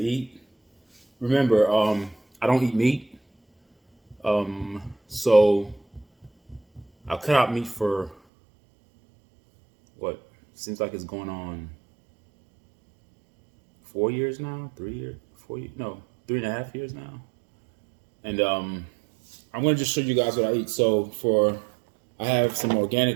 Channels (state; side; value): drops out; left; at 8.2 s